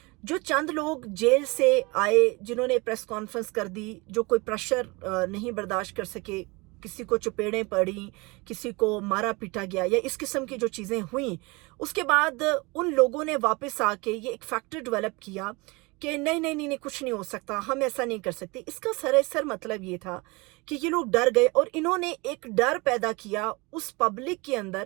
जो चंद लोग जेल से आए, जिन्होंने प्रेस कॉन्फ्रेंस कर दी, जो कोई प्रेशर नहीं बर्दाश्त कर सके, किसी को चपेड़ें पड़ी, किसी को मारा पीटा गया, या इस किस्म की जो चीज़ें हुई, उसके बाद उन लोगों ने वापस आके ये एक फैक्टर डेवलप किया कि नहीं नहीं नहीं नहीं, कुछ नहीं हो सकता, हम ऐसा नहीं कर सकते। इसका सरासर मतलब ये था कि ये लोग डर गए और इन्होंने एक डर पैदा किया उस पब्लिक के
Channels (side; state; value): left; quieter; 25.7 dB